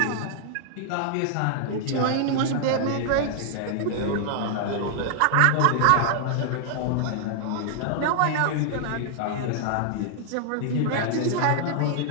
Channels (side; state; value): both; different; correlation -0.01